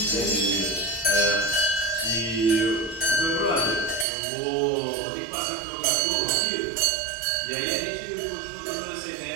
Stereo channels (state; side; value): drops out; left; at 4.0 s